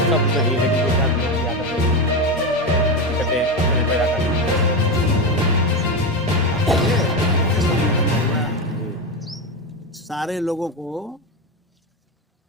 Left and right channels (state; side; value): normal; both; correlation 0.15